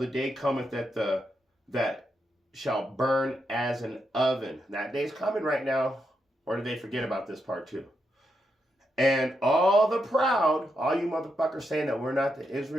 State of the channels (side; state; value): both; normal; correlation 0.83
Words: day cometh that shall burn as an oven. That day's coming right now. Or did they forget about this part too? And all the proud, all you motherfuckers saying that we're not the